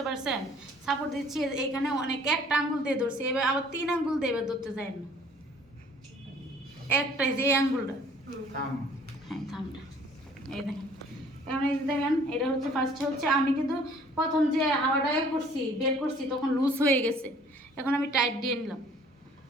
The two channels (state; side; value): normal; both; correlation 0.55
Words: পারছেন? সাপোর্ট দিচ্ছি, এইখানে অনেক একটা আঙ্গুল দিয়ে ধরছি, এবার আবার 3 আঙ্গুল দিয়ে এবার ধরতে যায় না, একটাই যে আঙ্গুলটা, হ্যাঁ থামটা, এই দেখেন। এখন এই দেখেন, এটা হচ্ছে ফার্স্টে হচ্ছে আমি কিন্তু প্রথম যে হাওয়াটা বের করছি তখন লুজ হয়ে গেছে, এখন আমি টাইট দিয়ে নিলাম,